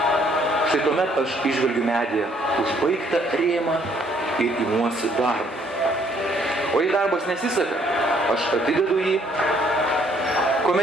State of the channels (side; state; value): both; normal; correlation 0.65